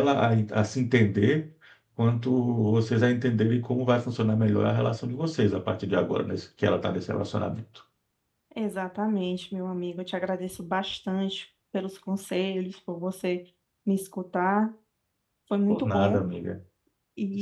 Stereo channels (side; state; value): both; identical; correlation 1.00